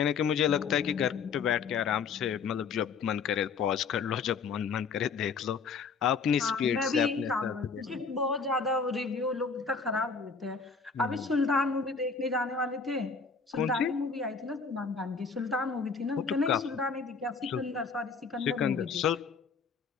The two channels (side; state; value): right; quieter; 5.2 dB